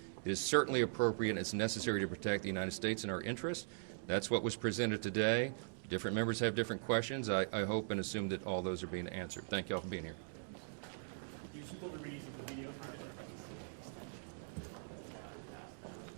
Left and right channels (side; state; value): left; silent; digital silence